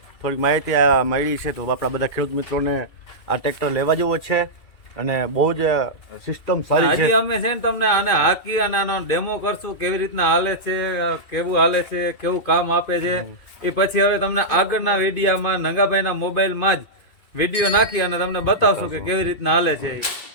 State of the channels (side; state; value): right; late; 2.5 ms